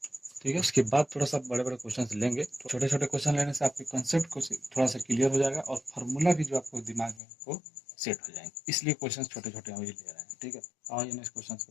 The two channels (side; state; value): right; drops out; at 7.2 s